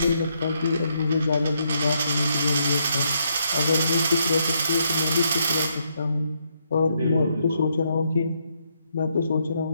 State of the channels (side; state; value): both; inverted; correlation -0.76